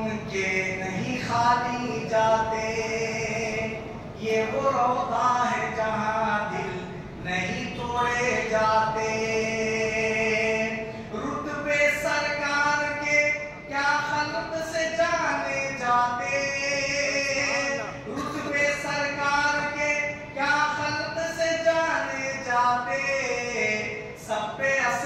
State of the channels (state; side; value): identical; both; correlation 1.00